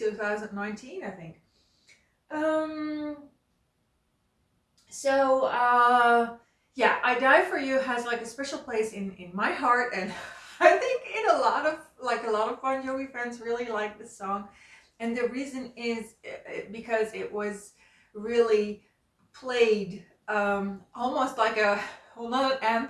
I think. Yeah, I Die For You has like a special place in my heart, and I think in a lot of Bon Jovi fans really like this song. And the reason is because it was really played almost like not an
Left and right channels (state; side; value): identical; both; correlation 1.00